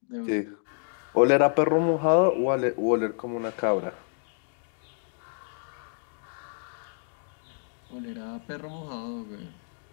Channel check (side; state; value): right; silent; digital silence